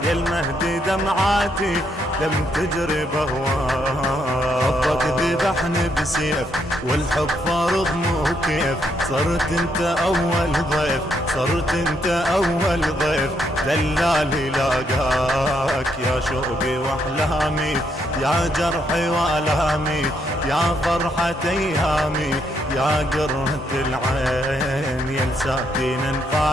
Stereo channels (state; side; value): normal; both; correlation 0.75